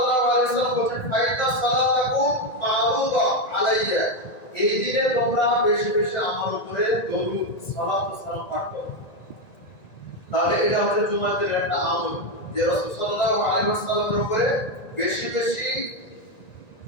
আলাইহি ওয়াসাল্লাম বলেন, ফাইদা সালাতাকুম মারুদা আলাইয়া, এই দিনে তোমরা বেশি বেশি আমার উপরে দরুদ সালাত ও সালাম পাঠ করো। তাহলে এটা হচ্ছে জুমার দিনের একটা আমল যে রাসূল সাল্লাল্লাহু আলাইহি ওয়াসাল্লামের উপরে বেশি বেশি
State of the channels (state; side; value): late; right; 1.9 ms